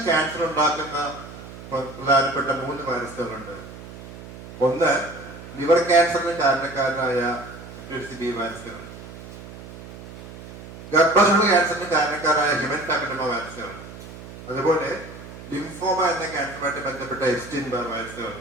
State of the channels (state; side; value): noise; right; hum, 14 dB below the sound